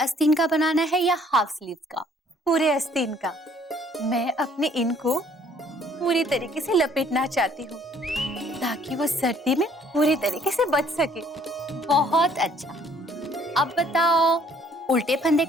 का बनाना है या हाफ स्लीव्स का? पूरे आस्तीन का। मैं अपने इन को पूरी तरीके से लपेटना चाहती हूँ ताकि वो सर्दी में पूरी तरीके से बच सके। बहुत अच्छा। अब बताओ, उल्टे फंदे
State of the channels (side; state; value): both; normal; correlation 0.61